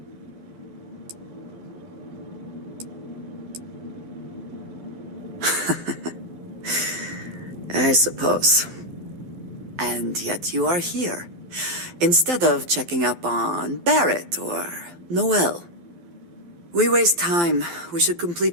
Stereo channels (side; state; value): left; late; 12 ms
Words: I suppose. And yet you are here, instead of checking up on Barrett or Noel. We waste time. We should